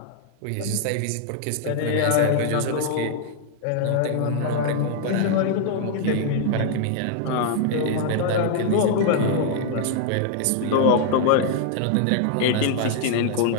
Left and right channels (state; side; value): different; both; correlation 0.00